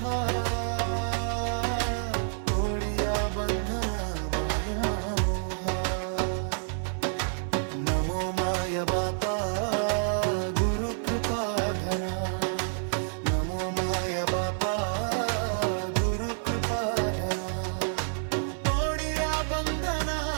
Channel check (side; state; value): left; silent; 59 dB below the other